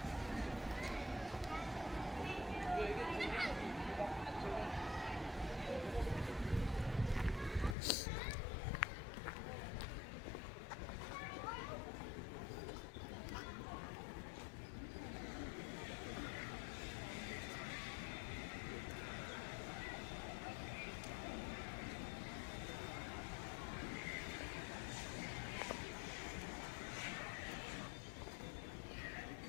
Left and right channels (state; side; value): drops out; right; at 7.8 s